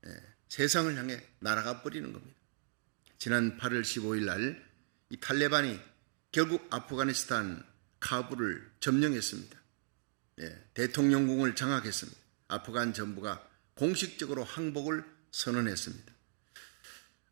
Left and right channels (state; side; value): silent; left; digital silence